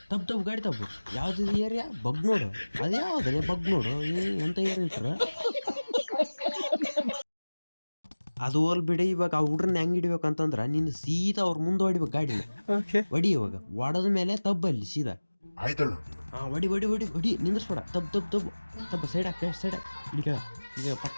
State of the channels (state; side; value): inverted; both; correlation -1.00